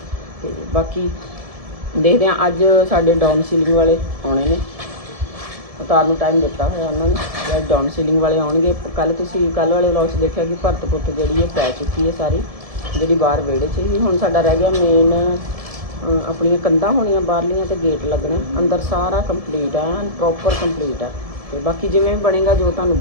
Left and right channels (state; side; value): late; left; 1.7 ms